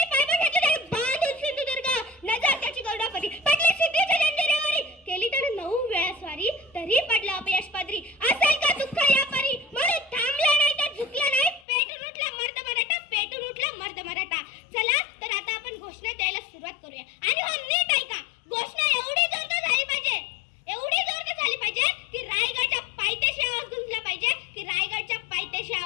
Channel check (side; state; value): right; drops out; at 11.7 s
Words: पायबा घेतलं त्याने, बांधून सिंधुदुर्ग, नजर त्याची गरुडापरी, पडली सिद्धीच्या जंजिरेवरी, केली त्याने 9 वेळा स्वारी, तरी पडला अपयश पदरी. असेल का दुःख या परी, म्हणून थांबला नाही तर झुकला नाही, पेटून उठला मर्द मराठा, पेटून उठला मर्द मराठा. चला तर आता आपण घोषणा द्यायला सुरुवात करूया. आणि हो नीट ऐका, घोषणा एवढी जोरदार झाली पाहिजे की रायगडच्या पायथ्याशी